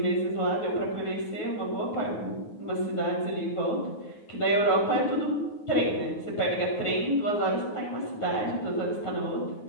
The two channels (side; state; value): right; late; 9.4 ms